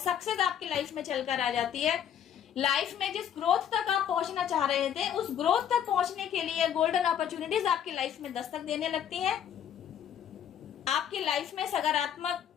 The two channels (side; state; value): right; quieter; 9.2 dB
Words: आपकी लाइफ में चलकर आ जाती है। लाइफ में जिस ग्रोथ तक आप पहुंचना चाह रहे थे, उस ग्रोथ तक पहुंचने के लिए गोल्डन अपॉर्चुनिटीज आपकी लाइफ में दस्तक देने लगती हैं। आपकी लाइफ में सकारात्मक